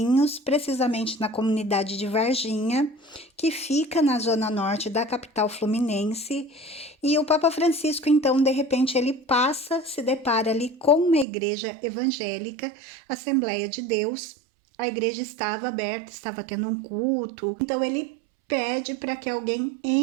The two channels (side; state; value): left; drops out; at 11.2 s